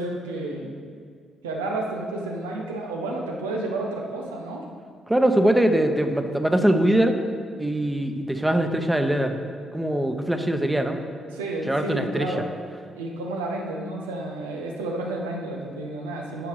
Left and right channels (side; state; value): both; normal; correlation 0.84